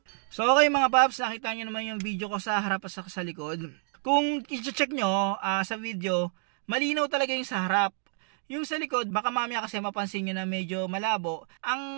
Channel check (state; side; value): silent; left; 59 dB below the other